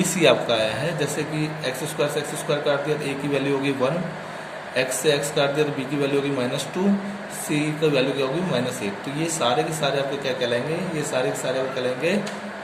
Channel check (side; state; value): both; identical; correlation 1.00